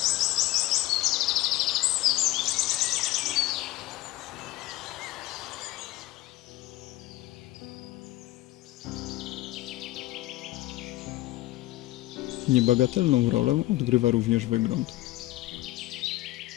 Niebagatelną rolę odgrywa również wygląd.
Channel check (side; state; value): right; quieter; 17.3 dB